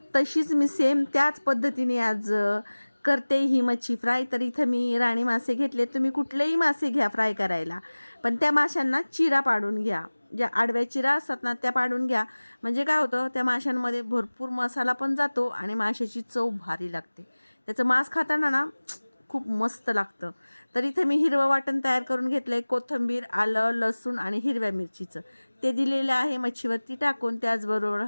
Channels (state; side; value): inverted; both; correlation -1.00